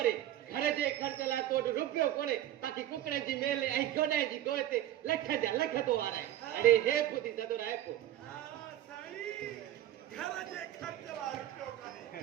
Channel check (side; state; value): left; quieter; 12.8 dB